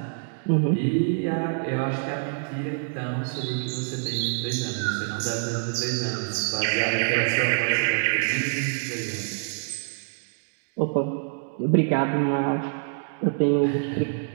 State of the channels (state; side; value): silent; left; digital silence